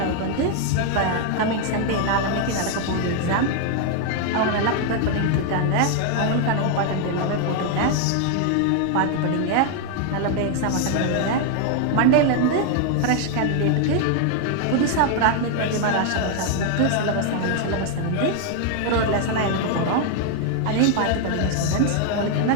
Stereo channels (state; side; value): different; both; correlation 0.00